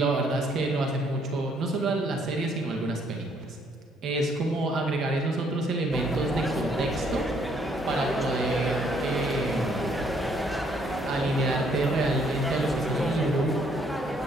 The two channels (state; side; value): normal; both; correlation 0.67